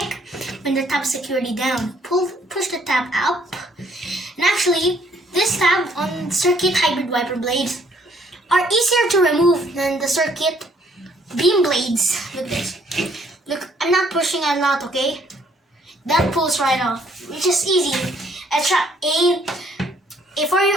when the tab is securely down. Push the tab up. And actually, this tab on circuit hybrid wiper blades are easier to remove than the circuit beam blades. Look this. Look, I'm not pushing a lot, okay? That pulls right off, which is easy. A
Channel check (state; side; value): normal; both; correlation 0.65